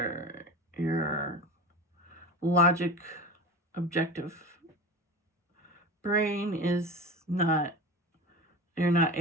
logic objective brain is not, you're not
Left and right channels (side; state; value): both; normal; correlation 0.29